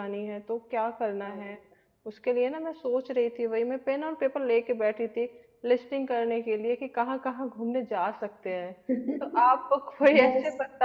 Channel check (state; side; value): identical; both; correlation 1.00